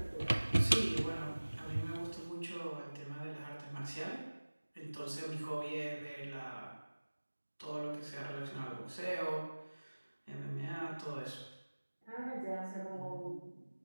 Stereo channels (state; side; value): inverted; both; correlation -1.00